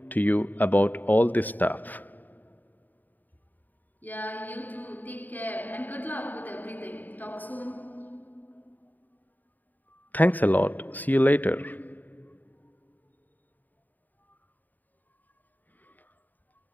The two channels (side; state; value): right; late; 0.086 ms